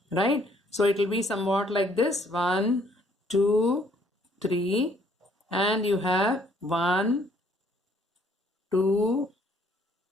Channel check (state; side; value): normal; both; correlation 0.64